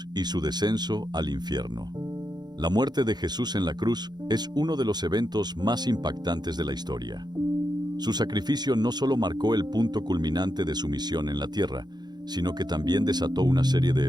y su descenso al infierno. La muerte de Jesús en la cruz es uno de los eventos más impactantes de la historia. Su sacrificio no solo marcó el punto culminante de su misión en la tierra, sino que también desató una serie de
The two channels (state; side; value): late; left; 0.20 ms